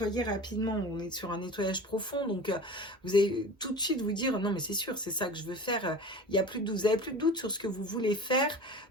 rapidement. On est sur un nettoyage profond, donc vous allez tout de suite vous dire, non, mais c'est sûr, c'est ça que je veux faire. Il y a plus de doute, vous avez plus de doute sur ce que vous voulez faire.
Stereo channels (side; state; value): both; normal; correlation 0.36